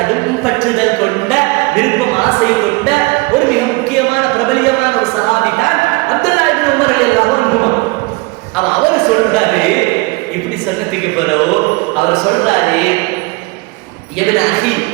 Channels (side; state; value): left; quieter; 25.3 dB